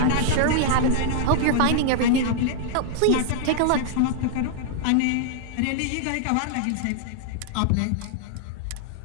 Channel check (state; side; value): different; both; correlation -0.01